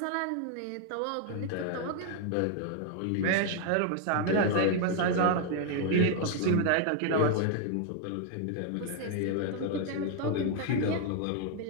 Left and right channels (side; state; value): both; different; correlation 0.00